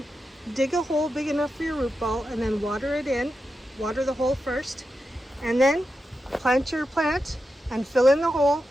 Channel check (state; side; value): normal; both; correlation 0.89